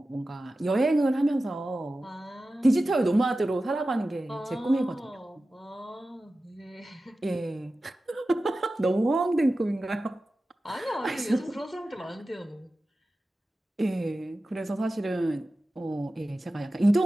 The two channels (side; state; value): both; normal; correlation 0.94